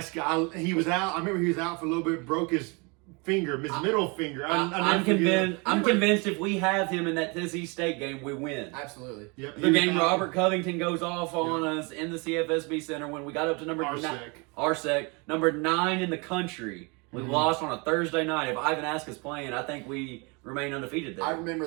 He was out. I remember he was out for a little bit, broke his finger, his middle finger. I'm convinced if we have him in that Tennessee State game, we win. Absolutely. Yep, the game Robert Covington goes off on us in the CFSB Center when we got up to number 9. RSEC, number 9 in the country. We lost on a Thursday night. If Ivan Aska's playing, I think we remain undefeated there. I remember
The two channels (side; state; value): left; quieter; 30.0 dB